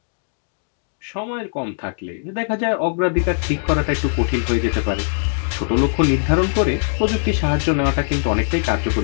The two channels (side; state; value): right; silent; digital silence